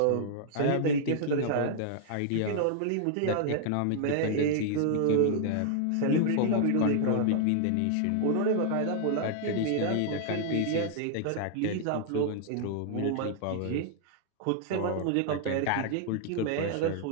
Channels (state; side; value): different; both; correlation -0.01